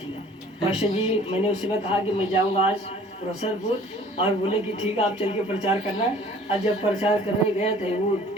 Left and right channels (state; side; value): normal; both; correlation 0.52